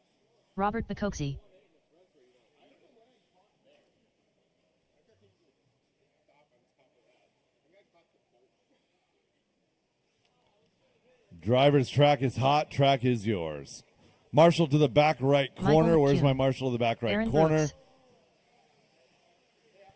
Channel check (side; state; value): both; identical; correlation 1.00